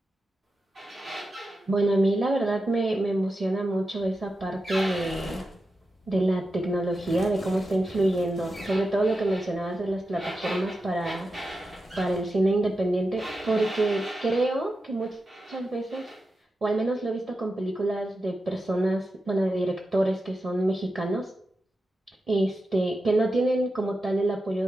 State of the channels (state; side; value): normal; both; correlation 0.90